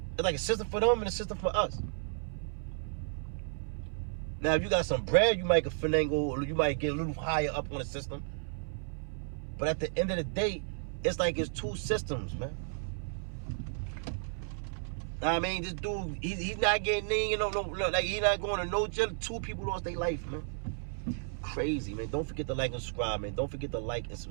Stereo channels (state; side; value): silent; left; 56 dB below the other